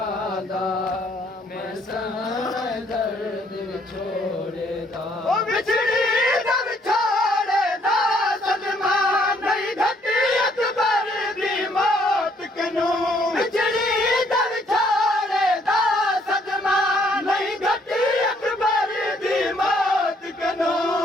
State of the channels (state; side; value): normal; both; correlation 0.66